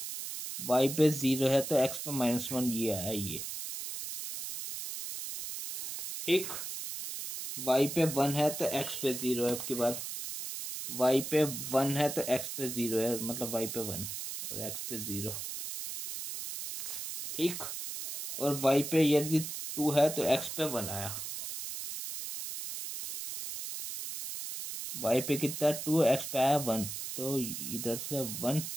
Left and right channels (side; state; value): right; noise; hiss, 6 dB below the sound